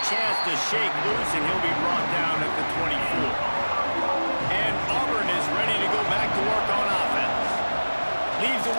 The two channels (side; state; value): both; inverted; correlation -1.00